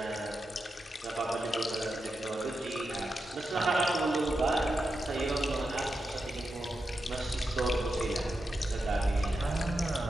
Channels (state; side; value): normal; both; correlation 0.88